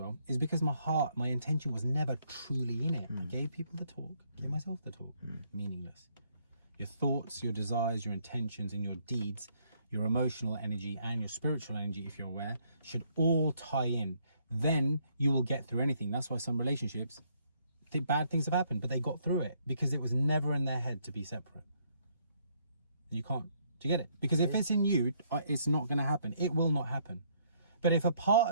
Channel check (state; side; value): inverted; both; correlation -0.69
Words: is because my intention was never truly in it. I gave people the talk, gave myself the talk. Meaningless. Your thoughts, your desires, your intentions, and your deeds, your emotional energy and your spiritual energy, if you're aware, should all tie in. Then you will get through anything. That's why some relationships, bad things have happened, but they got through it because it was never in their head to be separate. You can't. Do you get it? Because if it's in you, it's not going to happen. It will not happen. But if a